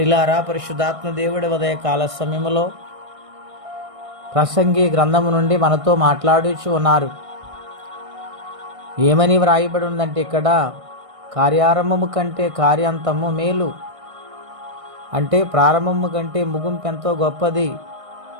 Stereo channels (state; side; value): late; left; 1.6 ms